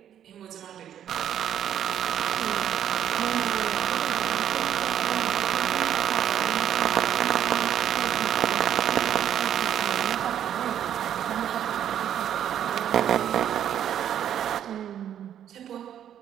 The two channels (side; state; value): left; quieter; 10.0 dB